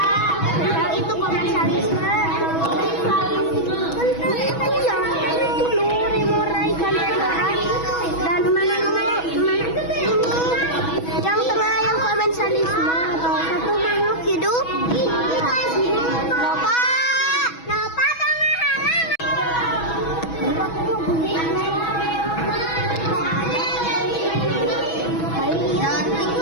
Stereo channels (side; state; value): right; late; 6.2 ms